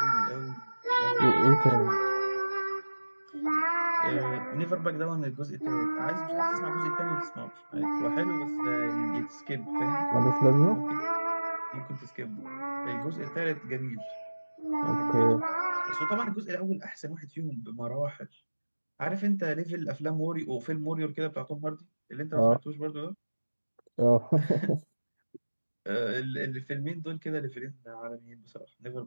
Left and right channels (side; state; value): both; inverted; correlation -1.00